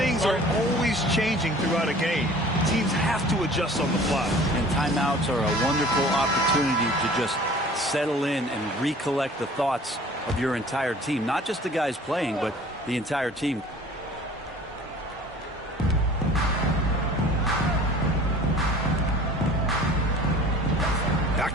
are always changing throughout a game. Teams have to adjust on the fly. And timeouts are a wonderful opportunity to just settle in and recollect the thoughts of your entire team. Not just the guys playing, but the entire team. Back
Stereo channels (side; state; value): both; normal; correlation 0.47